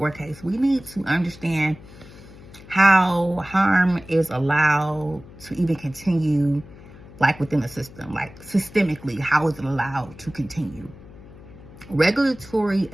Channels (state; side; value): noise; left; hum, 19 dB below the sound